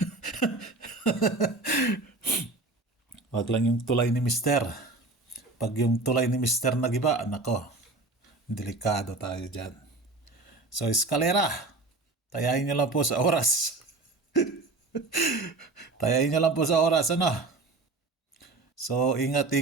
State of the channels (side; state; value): left; quieter; 3.3 dB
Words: Wag lang yung tulay ni Mister. Pag yung tulay ni Mister nagiba, nako, delikado tayo dyan. So, eskalera, tayain nyo lang po sa oras. Tayain nyo lang po sa oras, ano. So,